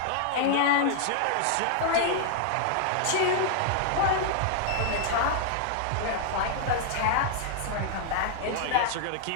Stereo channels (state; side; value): different; both; correlation -0.01